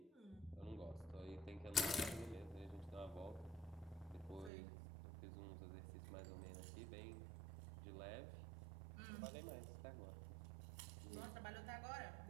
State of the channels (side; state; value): left; drops out; at 4.5 s